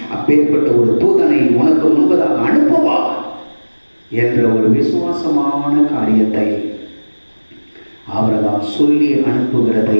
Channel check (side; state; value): both; inverted; correlation -1.00